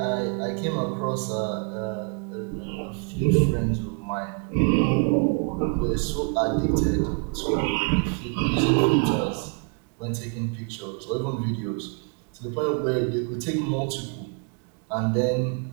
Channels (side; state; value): left; quieter; 36.3 dB